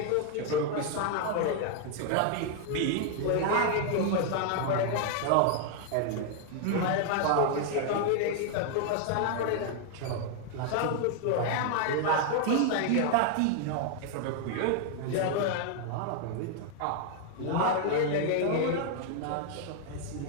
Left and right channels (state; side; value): different; both; correlation 0.00